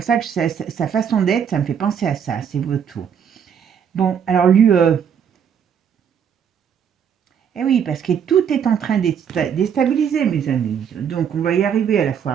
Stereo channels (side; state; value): left; quieter; 7.9 dB